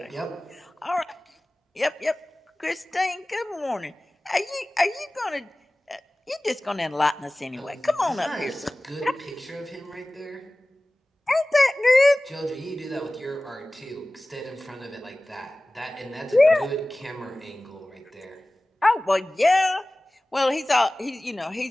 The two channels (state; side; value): normal; both; correlation 0.98